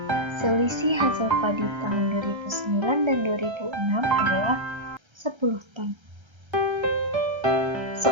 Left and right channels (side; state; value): left; late; 1.3 ms